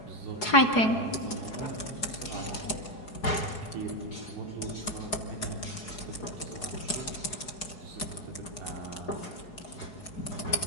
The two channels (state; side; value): late; right; 4.7 ms